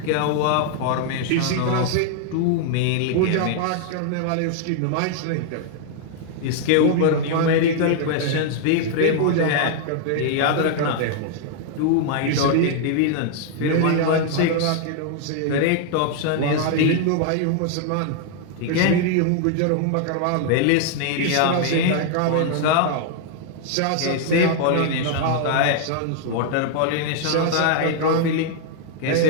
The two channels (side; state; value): both; different; correlation 0.00